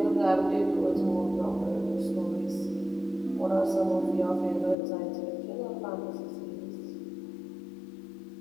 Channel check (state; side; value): drops out; right; at 4.8 s